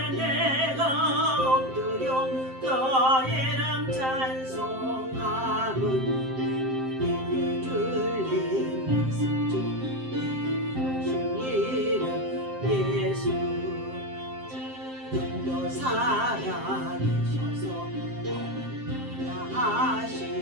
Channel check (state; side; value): late; left; 7.6 ms